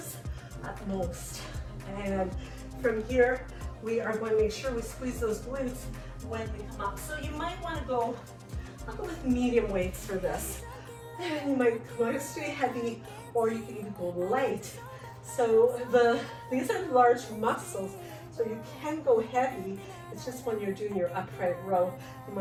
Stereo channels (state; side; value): identical; both; correlation 1.00